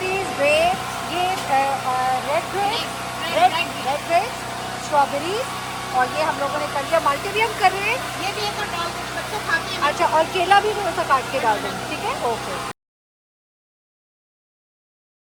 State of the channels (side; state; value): both; identical; correlation 1.00